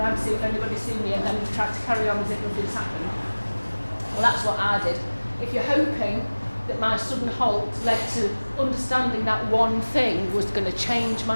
to see if anybody's seen you, and then you try to carry on as if nothing's happened. Well, that's what I did. If you're hoping that my sudden halt led to understanding that one thing was going to change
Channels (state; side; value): inverted; both; correlation -1.00